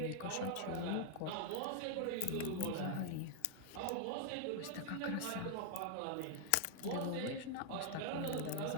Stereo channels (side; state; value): both; different; correlation 0.00